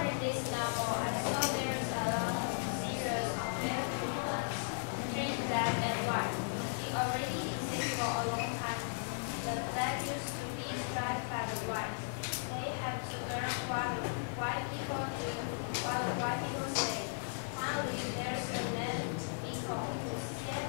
read this novel, I saw there's a lot of series of different treat black and white. It already exists for a long time. The black used to be striped by the white. They have to learn what white people do, what white people say. Finally, there's a man people who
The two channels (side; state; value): right; silent; digital silence